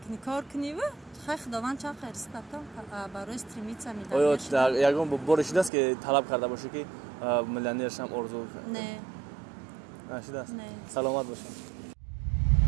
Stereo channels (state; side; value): drops out; left; at 5.7 s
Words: кор кунӣ ва хай худованд ча қайристад барои стремиться оё ягон боре шудааст ки талаб карда бошӣ ки миллионер шам орзу? Не. Нашудааст? Не. Саломат бошед.